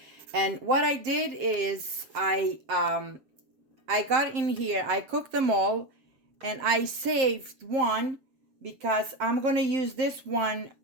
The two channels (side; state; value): left; late; 7.6 ms